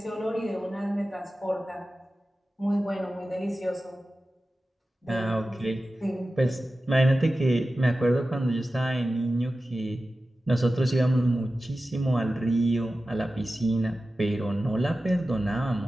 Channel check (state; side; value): normal; both; correlation 0.94